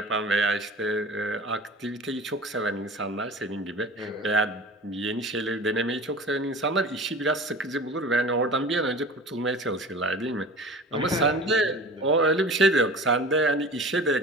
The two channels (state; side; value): normal; both; correlation 0.39